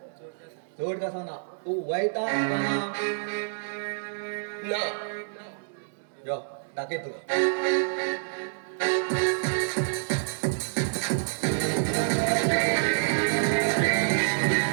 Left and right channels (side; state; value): left; silent; 60 dB below the other